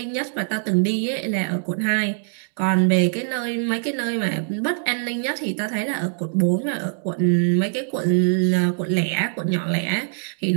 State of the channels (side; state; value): left; silent; 64 dB below the other